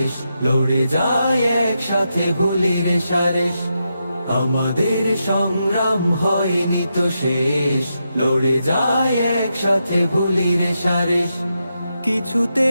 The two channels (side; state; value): both; inverted; correlation -0.85